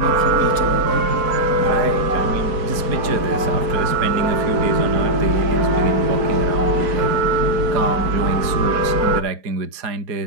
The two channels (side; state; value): left; late; 4.2 ms